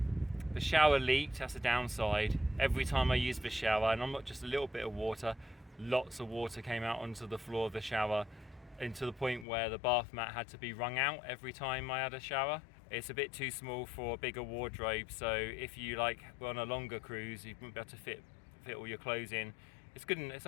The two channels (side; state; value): right; drops out; at 9.5 s